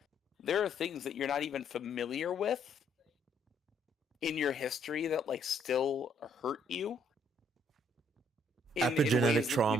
there are things that you're not even familiar with in your history that like still hurt you. Epigenetic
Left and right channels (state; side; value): normal; both; correlation 0.67